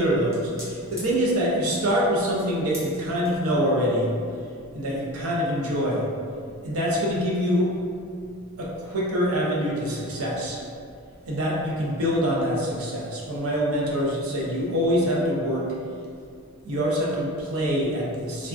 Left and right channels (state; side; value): normal; both; correlation 0.33